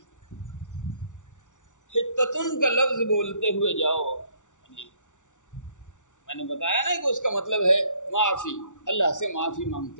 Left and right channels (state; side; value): late; right; 0.86 ms